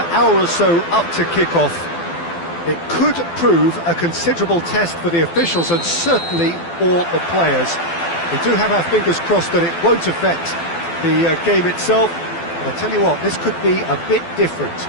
hour or so up to kick-off. It could prove a considerable test for the officials and certainly for the players. We do have our fingers crossed that it won't affect the game itself, but I'll tell you what, this could be a bit different.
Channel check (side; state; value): right; late; 12 ms